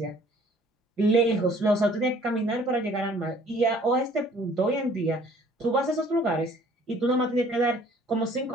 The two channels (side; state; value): both; normal; correlation 0.55